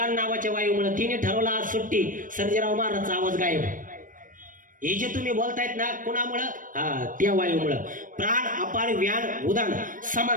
नावाच्या वायूमुळे. तिने ठरवलं आज सुट्टी, सर्जेराव महाराजचा आवाज गायब. हे जे तुम्ही बोलतायत ना कुणामुळं? त्या वायूमुळं. प्राण, अपान, व्यान, उदान,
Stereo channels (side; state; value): left; late; 0.39 ms